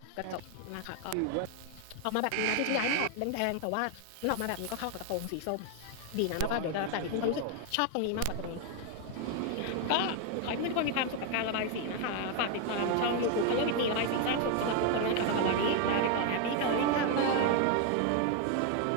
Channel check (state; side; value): different; both; correlation 0.01